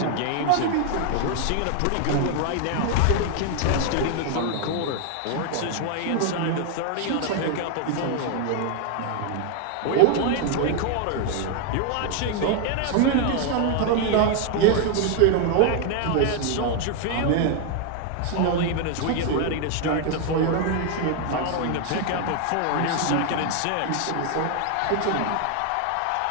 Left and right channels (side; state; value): both; different; correlation 0.00